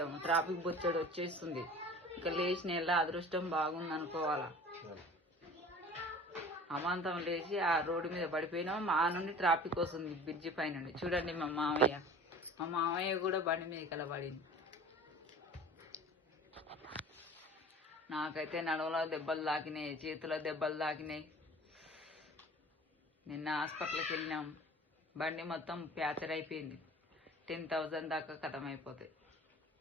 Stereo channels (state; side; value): normal; both; correlation 0.43